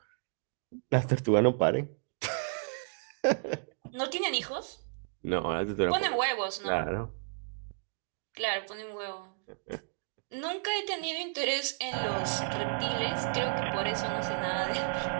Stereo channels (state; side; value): silent; left; digital silence